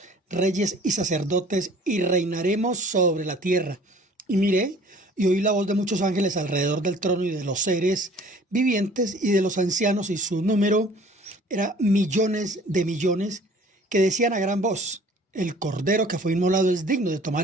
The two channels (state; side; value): normal; both; correlation 0.51